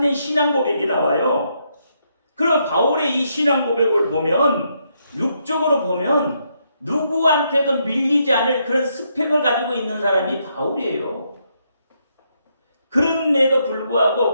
신앙 고백이 나와요. 그럼 바울의 이 신앙 고백을 보면 육적으로 보면 누구한테도 밀리지 않을 그런 스펙을 가지고 있는 사람이 바울이에요. 그런데도 불구하고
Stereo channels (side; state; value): both; inverted; correlation -0.77